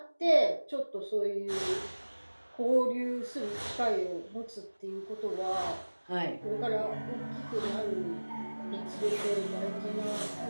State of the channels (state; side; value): inverted; both; correlation -1.00